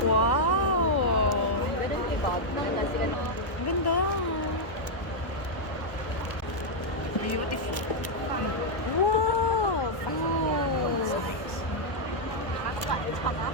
Wow! Ang ganda. Beautiful. Wow!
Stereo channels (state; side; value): late; right; 1.1 ms